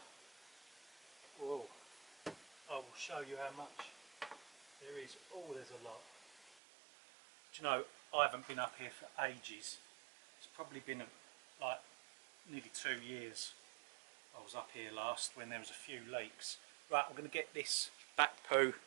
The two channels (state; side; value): drops out; left; at 6.6 s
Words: Whoa. I will show you how much there is. Oh, there's a lot. Do you know, I haven't been up here for ages. It's probably been like nearly 2 years. I was up here last when there was a few leaks. Right, I'm going to get this bat poo